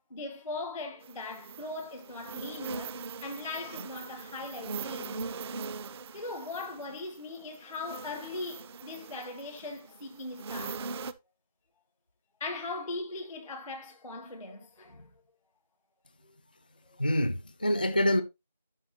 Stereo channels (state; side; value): inverted; both; correlation -0.69